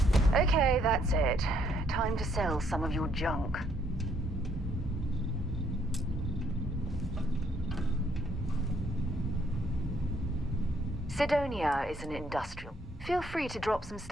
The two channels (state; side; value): normal; both; correlation 0.69